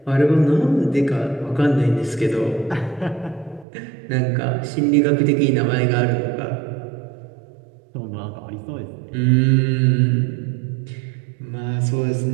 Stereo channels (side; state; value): left; drops out; at 3.7 s